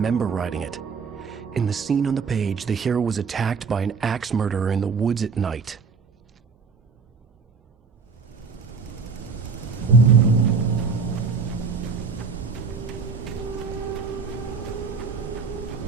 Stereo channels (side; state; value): left; quieter; 5.2 dB